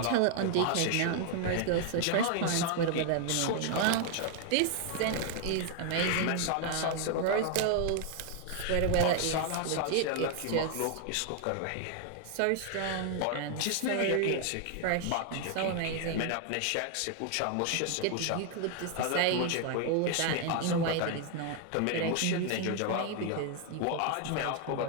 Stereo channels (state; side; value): different; both; correlation 0.00